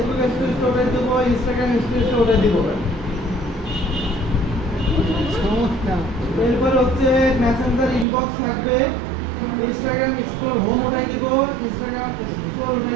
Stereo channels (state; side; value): drops out; left; at 8.1 s